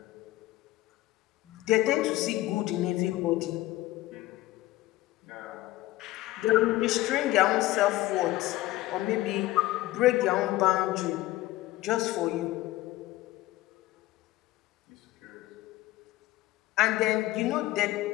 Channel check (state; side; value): quieter; right; 17.1 dB